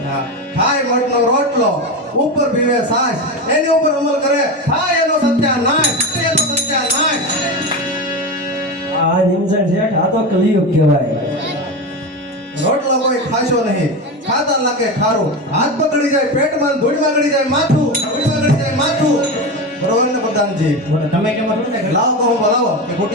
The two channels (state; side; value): normal; both; correlation 0.20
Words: હા, ખાય મઠનો રોટલો ઉપર પીવે સાસ, એની ઉપર અમલ કરે થાય એનો સત્યાનાશ. આ નિમસન શેઠ આ તો કલિયુગ કહેવાય. રોટલો કોઈ ખાશો નહીં, ખાતા લાગે ખારું, હાથ પકડી જાય પેટમાં, ધૂળમાં ગળી જાય માથું. બરોબર ને પ્રધાનજી? તમે કેમ છો ને લાવો તો હું બોલાવો કે